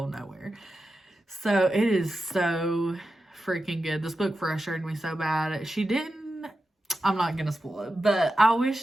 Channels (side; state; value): both; normal; correlation 0.91